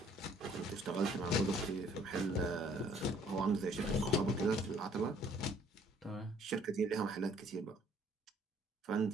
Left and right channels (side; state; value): both; normal; correlation 0.60